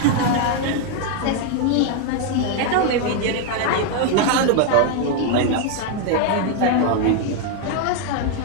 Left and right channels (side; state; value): both; different; correlation 0.00